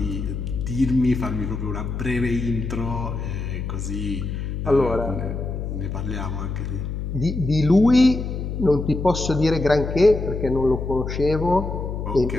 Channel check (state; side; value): noise; left; hum, 4 dB below the sound